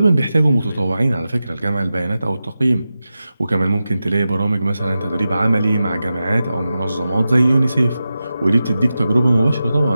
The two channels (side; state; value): both; inverted; correlation -0.92